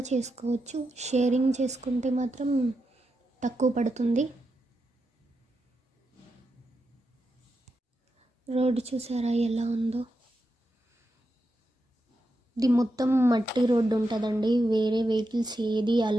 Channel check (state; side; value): normal; both; correlation 0.86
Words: చేసుకోవచ్చు. షేరింగ్ చేసుకుంటే మాత్రం తక్కువ పడుతుంది. రోడ్డు చూసారా ఎలా ఉందో. ఇది మొత్తం మట్టి రోడ్డు ఉంటుందండి. వేరే వెహికల్స్ ఏది